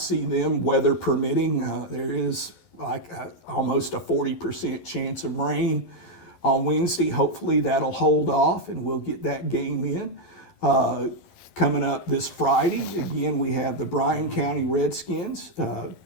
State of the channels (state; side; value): late; right; 11 ms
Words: them, weather permitting. There is almost a 40% chance of rain on Wednesday. Hopefully that'll hold off and we'll get that game in. Coming up this Friday, again, we have the Bryan County Redskins